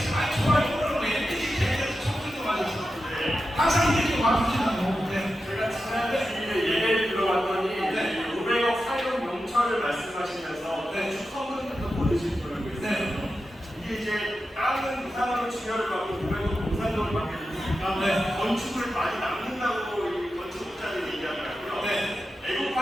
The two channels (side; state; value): both; normal; correlation 0.91